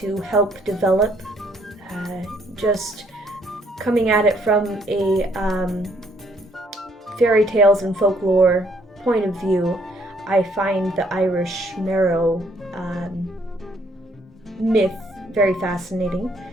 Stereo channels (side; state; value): both; normal; correlation 0.66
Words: help develop. Just coming at it from a fairy tales and folklore point of view, I find the Irish Merrow myth very fascinating